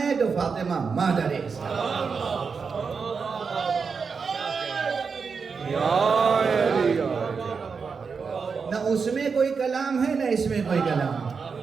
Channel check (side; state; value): left; quieter; 5.4 dB